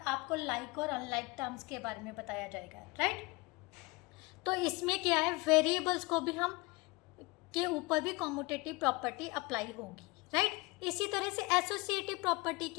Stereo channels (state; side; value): quieter; right; 24.7 dB